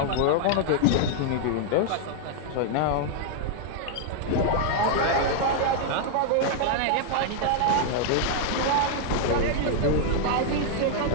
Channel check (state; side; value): different; both; correlation -0.01